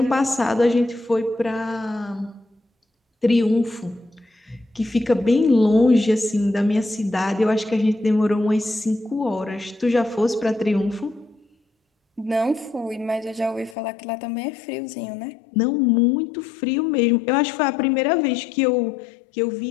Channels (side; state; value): right; drops out; at 13.8 s